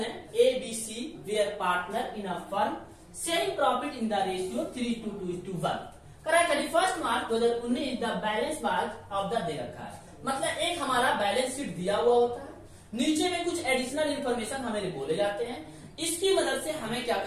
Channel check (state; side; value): identical; both; correlation 1.00